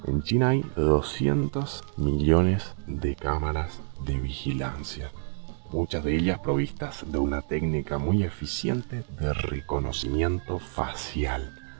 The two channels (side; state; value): left; silent; digital silence